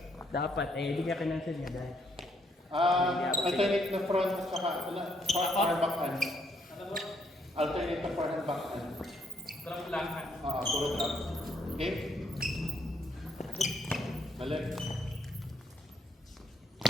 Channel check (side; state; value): both; normal; correlation 0.72